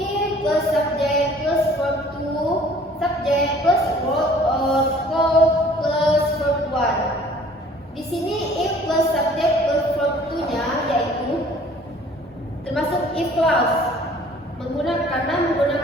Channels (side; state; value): both; normal; correlation 0.53